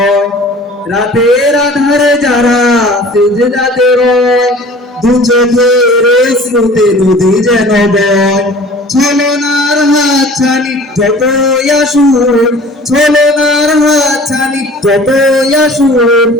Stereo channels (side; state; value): both; normal; correlation 0.46